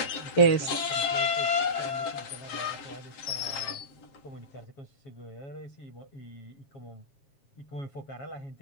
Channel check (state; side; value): late; right; 7.4 ms